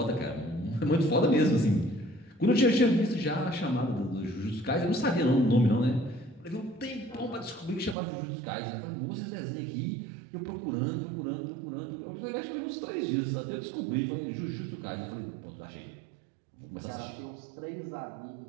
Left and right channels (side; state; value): left; drops out; at 8.0 s